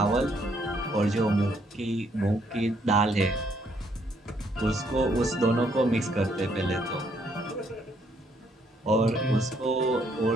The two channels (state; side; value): normal; both; correlation 0.70